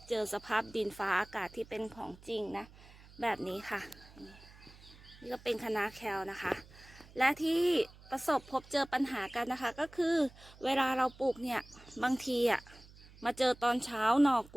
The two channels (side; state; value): right; noise; hum, 22 dB below the sound